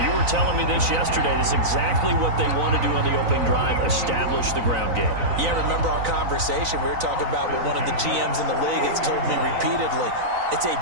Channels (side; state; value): left; late; 3.9 ms